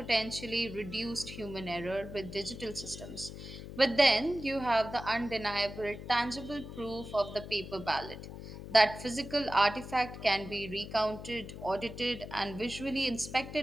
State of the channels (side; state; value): left; noise; hum, 11 dB below the sound